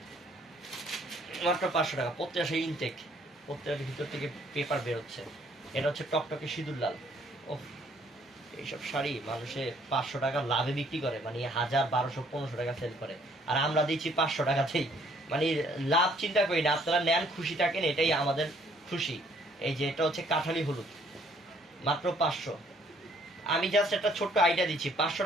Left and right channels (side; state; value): both; normal; correlation 0.63